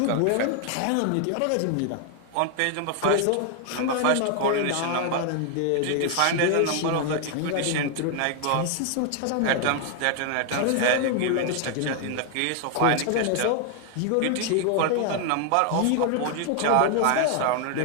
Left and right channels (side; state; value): both; different; correlation 0.00